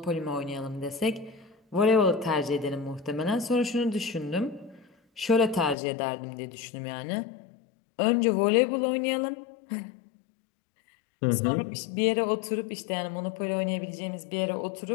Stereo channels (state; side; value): drops out; right; at 5.8 s